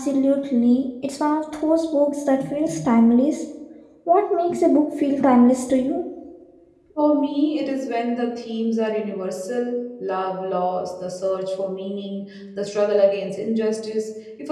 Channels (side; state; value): both; identical; correlation 1.00